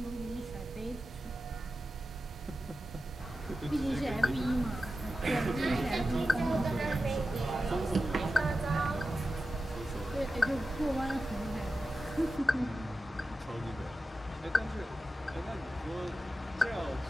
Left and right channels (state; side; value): normal; both; correlation 0.91